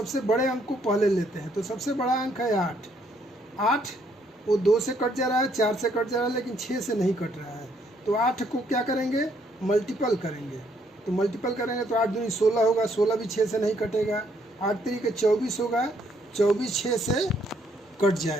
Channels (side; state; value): both; normal; correlation 0.69